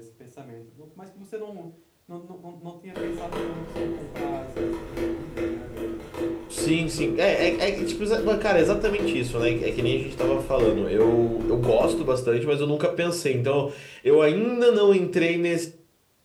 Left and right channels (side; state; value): both; identical; correlation 1.00